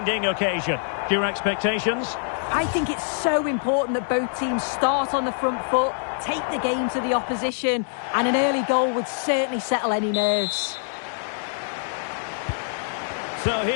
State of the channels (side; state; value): right; silent; digital silence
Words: occasion. Your expectations? I think it's so important that both teams start on the front foot, take the game to the opposition, and an early goal would certainly settle any nerves. So